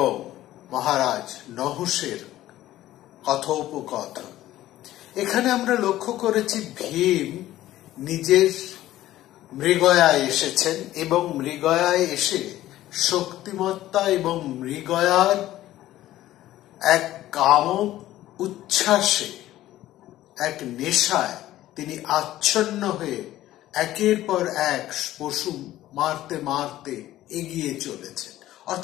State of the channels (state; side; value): quieter; right; 14.5 dB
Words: মহারাজ নহুষের কথোপকথন। এখানে আমরা লক্ষ্য করেছি ভীম নিজের মৃগয়ায় এসেছেন এবং মৃগয়ায় এসে শক্তিমত্তা এবং মৃগয়ার এক কাম উচ্ছ্বাসে, এক নেশায় তিনি আচ্ছন্ন হয়ে একের পর এক পশু মারতে মারতে এগিয়ে চলেছেন।